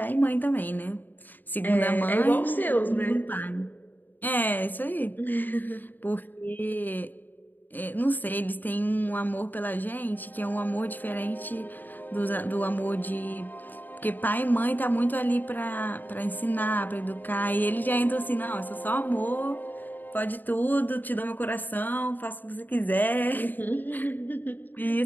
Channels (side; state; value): right; late; 0.088 ms